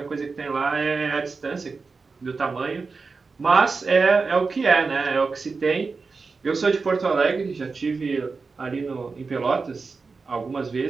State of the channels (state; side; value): quieter; left; 4.4 dB